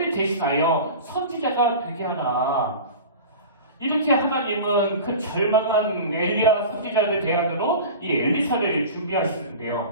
대신하여 선지자가 되게 하라. 이렇게 하나님은 그 절망한 엘리야 선지자를 대안으로 이 엘리사를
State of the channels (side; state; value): both; inverted; correlation -0.34